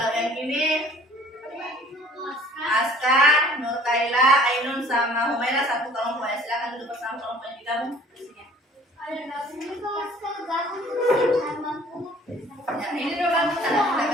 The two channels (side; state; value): both; normal; correlation 0.53